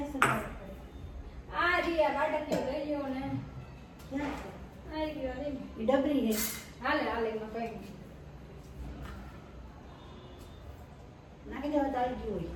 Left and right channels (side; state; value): both; identical; correlation 1.00